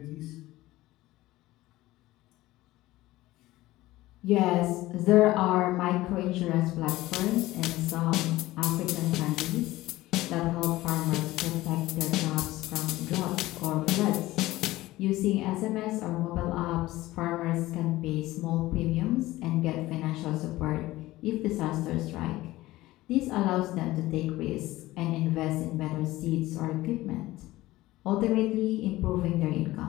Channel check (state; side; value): quieter; right; 17.5 dB